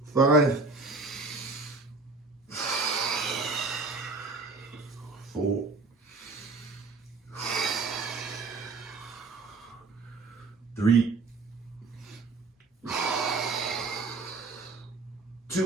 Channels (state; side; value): quieter; left; 3.8 dB